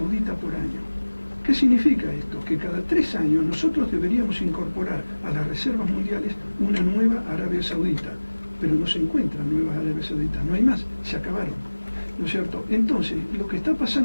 por año. ¿Qué significa esto? Que cada 3 años nosotros deberíamos incorporar a las reservas mundiales una nueva Arabia Saudita, pero no se encuentran nuevas Arabia Sauditas, no hay más, se acabaron, ¿no es cierto? Entonces, lo que está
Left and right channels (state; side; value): inverted; both; correlation -1.00